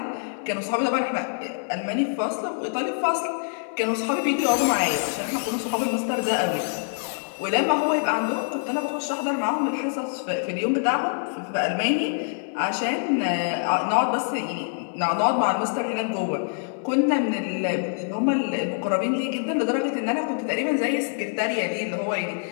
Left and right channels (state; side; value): silent; right; digital silence